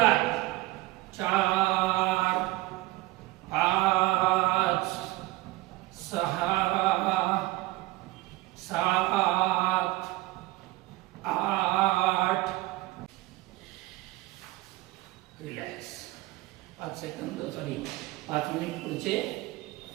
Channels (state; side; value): quieter; left; 19.6 dB